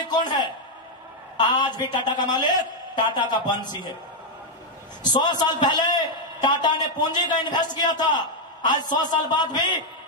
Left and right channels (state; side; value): normal; both; correlation 0.00